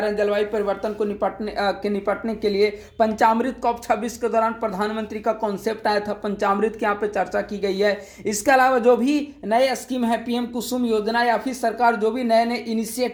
हैं जलवायु परिवर्तन को निपटने के लिए। पंचामृत COP 26 के दौरान प्रधानमंत्री का कॉन्सेप्ट आया था, पंचामृत की यहाँ पे चर्चा की गई है। इसके अलावा जो भी नए स्कीम है, PM कुसुम योजना या फिर सरकार जो भी नए नए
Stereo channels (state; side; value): identical; both; correlation 1.00